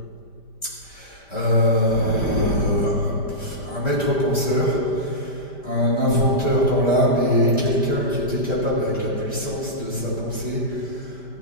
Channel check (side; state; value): right; late; 5.1 ms